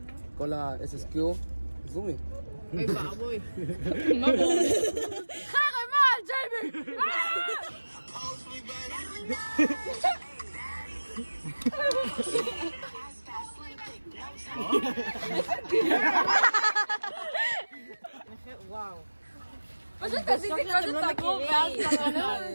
כל ה-SSQ, זומי. אוי בעבוי. חרם על ג'ייבי! פשוט תעשיתי קודם את הגרוב ואז כמובן.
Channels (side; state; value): both; inverted; correlation -1.00